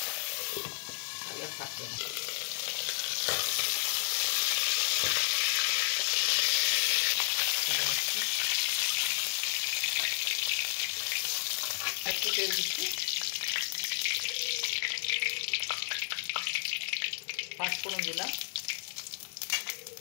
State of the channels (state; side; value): silent; right; digital silence